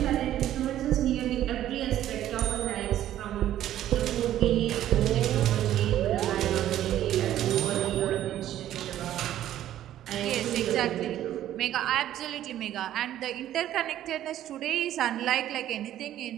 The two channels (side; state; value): left; quieter; 12.3 dB